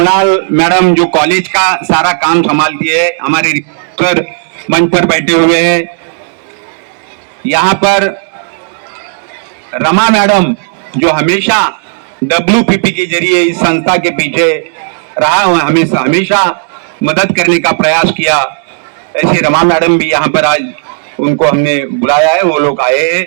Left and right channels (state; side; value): silent; left; digital silence